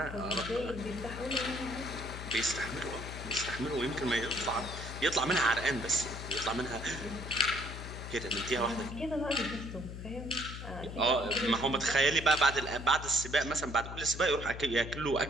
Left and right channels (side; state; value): left; noise; hum, 9 dB below the sound